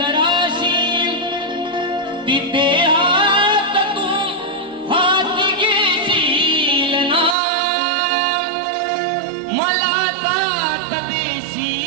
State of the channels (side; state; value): left; drops out; at 7.4 s